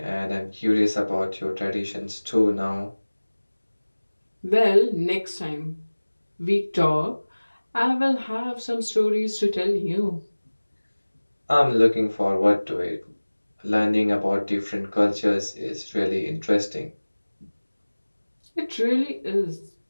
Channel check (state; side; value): inverted; both; correlation -1.00